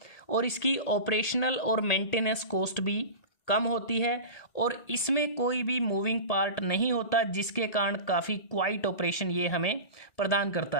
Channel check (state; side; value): late; right; 1.8 ms